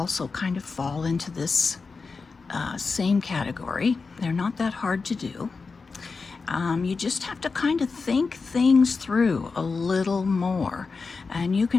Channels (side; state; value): right; quieter; 4.5 dB